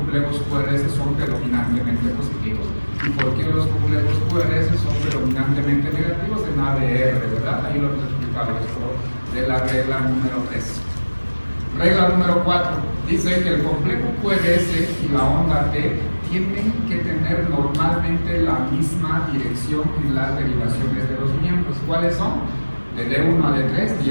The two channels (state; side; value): inverted; both; correlation -1.00